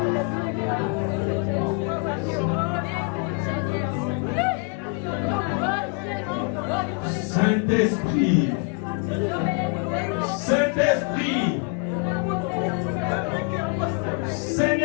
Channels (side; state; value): right; quieter; 32.6 dB